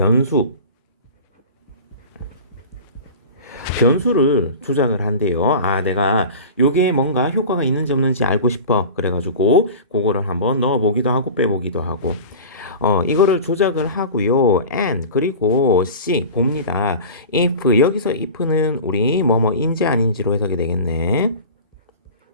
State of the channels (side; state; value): both; inverted; correlation -0.35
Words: 변수를 조작을 한대요. 아, 내가 요게 뭔가 효과가 있는지 없는지 알고 싶어. 그래가지고 그거를 한번 넣어보기도 하고 빼보기도 하고. 이거를 조작을 하고요. and 그리고 c 봅니다. if, 여기서 if는 우리 뭐뭐인지 아닌지로 해석이 되겠네.